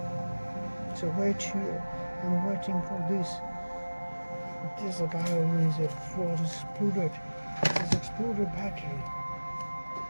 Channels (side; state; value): both; inverted; correlation -1.00